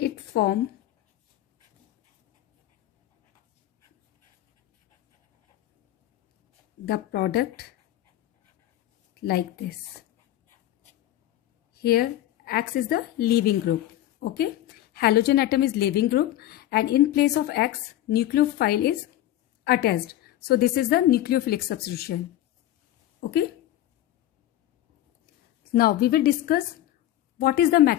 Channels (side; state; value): right; quieter; 13.5 dB